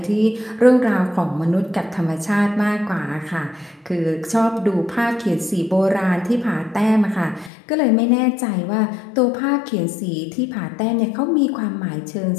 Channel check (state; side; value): drops out; right; at 7.5 s